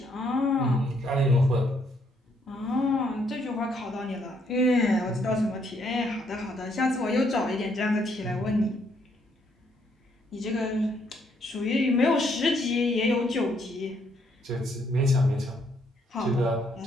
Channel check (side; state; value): both; normal; correlation 0.71